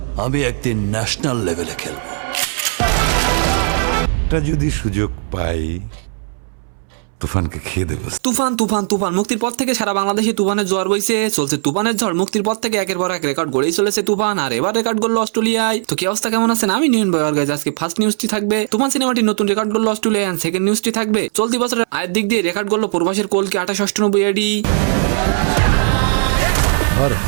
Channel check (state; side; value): silent; left; 67 dB below the other